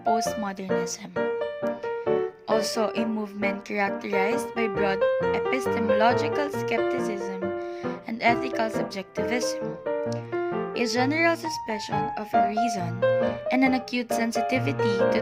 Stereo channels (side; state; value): both; identical; correlation 1.00